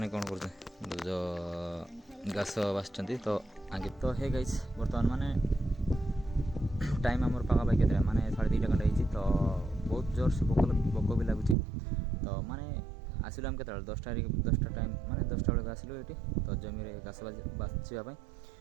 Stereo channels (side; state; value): left; drops out; at 11.6 s